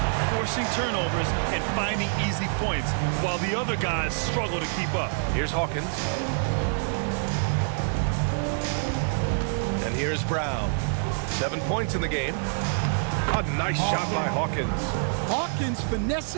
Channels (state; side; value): silent; left; digital silence